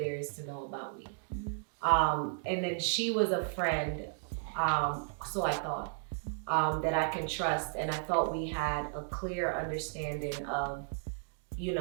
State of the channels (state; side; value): silent; left; digital silence